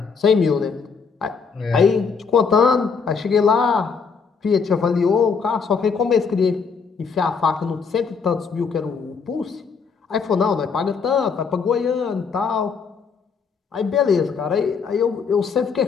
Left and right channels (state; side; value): quieter; right; 5.5 dB